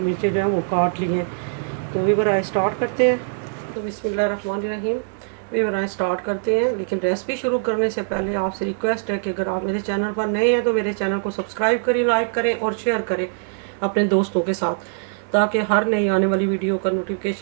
जो हैं वो काट ली हैं। तो वीवर आए स्टार्ट करते हैं। तो बिस्मिल्लाहिर्रहमानिर्रहीम, वीवर आए स्टार्ट करते हैं। लेकिन रेसिपी शुरू करने से पहले आपसे रिक्वेस्ट है कि अगर आप मेरे चैनल पर नए हैं तो मेरे चैनल को सब्सक्राइब करें, लाइक करें और शेयर करें अपने दोस्तों के साथ, ताकि हर नई आने वाली वीडियो का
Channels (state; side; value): silent; left; 58 dB below the other